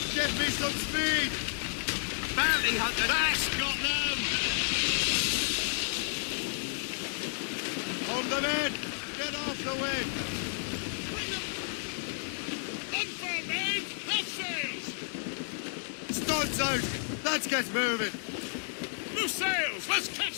Get me some speed! Bounty hunter! That's got them! Hold them in! Get off the wind! Unfurl, men! Half sails! Studs out! Let's get moving! Loose sails! Let's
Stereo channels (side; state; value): right; silent; digital silence